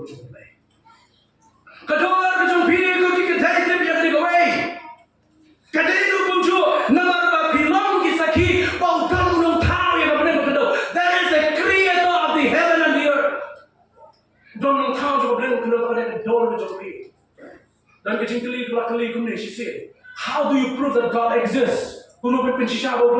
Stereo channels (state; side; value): identical; both; correlation 1.00